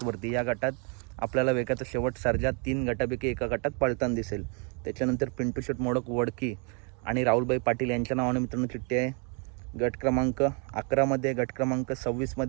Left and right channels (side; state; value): left; quieter; 36.4 dB